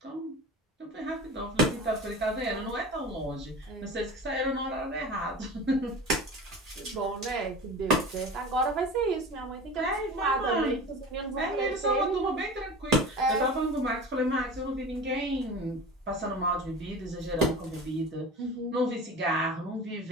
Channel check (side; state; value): both; normal; correlation 0.34